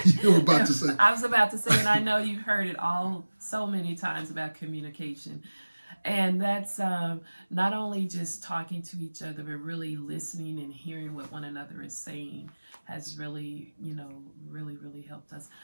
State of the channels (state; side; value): inverted; both; correlation -1.00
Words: You were about to say. I was about to say, and I know you've heard it all so many times about communication. And that's not only just talking to each other, but really listening and hearing what one another is saying has really, really helped us.